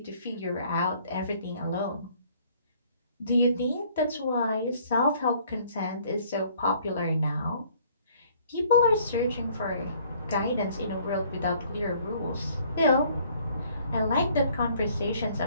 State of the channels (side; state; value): both; inverted; correlation -0.59